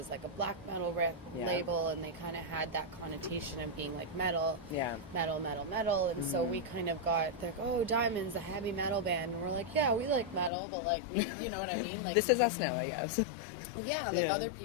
like a black metal label, and they kind of had that connotation of being like metal, and so we kind of got like, oh, Diemonds, the heavy metal band, and we're like, yeah, we like metal, but like, we, you know what I mean? Like, this is us now, I guess. Yeah, like other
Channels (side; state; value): right; drops out; at 10.5 s